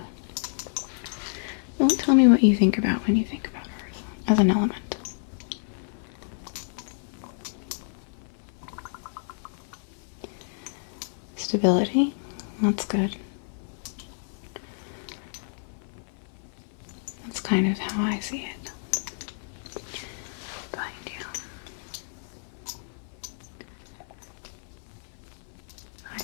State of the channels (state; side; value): silent; right; 58 dB below the other